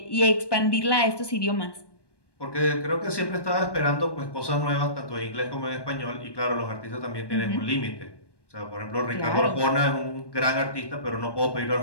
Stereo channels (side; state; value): right; late; 1.2 ms